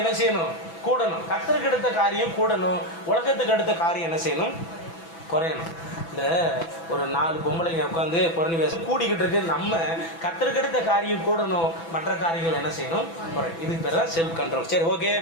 என்ன செய்யணும், கூடணும். கர்த்தருக்கு எடுத்த காரியம் கூடணும், உலகத்துக்கு எடுத்த காரியம் என்ன செய்யணும், குறையணும். இந்த ஒரு 4 பொம்பளைங்க உட்காந்து புறணி பேச கூடிக்கிட்டு இருக்கு. நம்ம கர்த்தருக்கு எடுத்த காரியம் கூடணும், மற்ற காரியங்கள் என்ன செய்யணும், குறை. இதுக்கு பேர் தான் செல்ஃப் கண்ட்ரோல். சரி, ஓகே.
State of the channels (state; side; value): late; right; 6.0 ms